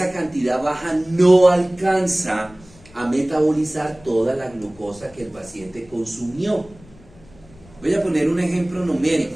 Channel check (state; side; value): noise; left; rumble, 25 dB below the sound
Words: cantidad baja no alcanza a metabolizar toda la glucosa que el paciente consumió. Voy a poner un ejemplo numérico.